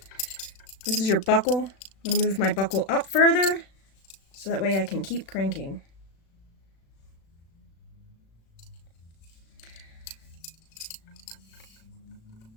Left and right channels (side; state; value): right; late; 36 ms